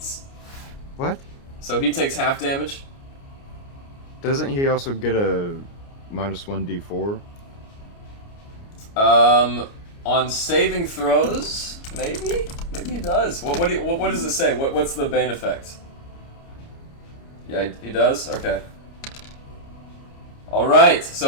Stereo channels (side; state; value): right; late; 29 ms